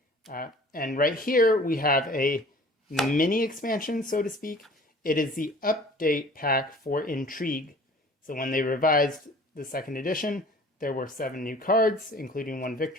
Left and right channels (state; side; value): normal; both; correlation 0.48